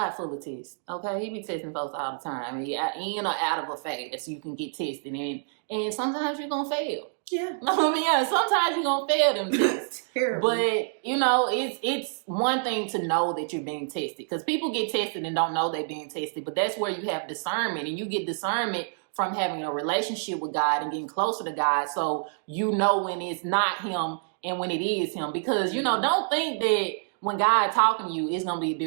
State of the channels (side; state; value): left; silent; digital silence